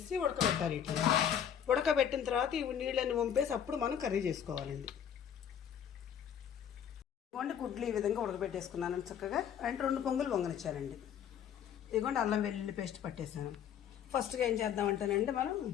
ఉడకబెట్టాలి. ఇట్లా ఉడకబెట్టిన తర్వాత ఈ నీళ్ళని వంపేసి అప్పుడు మనం కర్రీ చేసుకోవాలండి. ఇదిగోండి గుడ్లు ఈ విధంగా ఉడకబెట్టేసుకున్నాను చక్కగా. అంటే 2 పొంగులు పొంగనిచ్చానండి. ఇదిగోండి అల్లం వెల్లుల్లి పేస్ట్ పట్టేసాను. ఫస్ట్గా ఏం చేద్దామంటేనండి మనం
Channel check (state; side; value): quieter; right; 8.8 dB